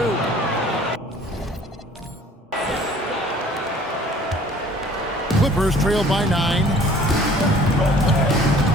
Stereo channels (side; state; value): both; normal; correlation 0.52